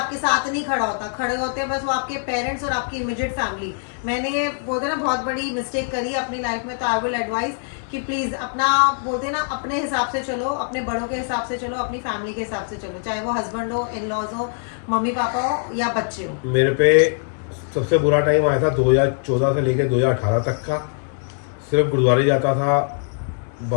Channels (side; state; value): right; silent; 64 dB below the other